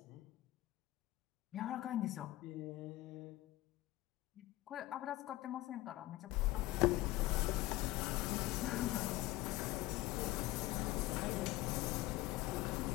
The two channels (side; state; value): right; quieter; 17.6 dB